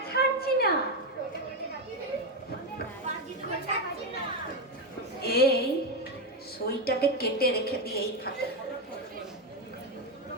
ছাড়ছি না। এই সইটাকে কেটে রেখে দিয়ে এই ফাঁকে।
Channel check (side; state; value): both; normal; correlation 0.09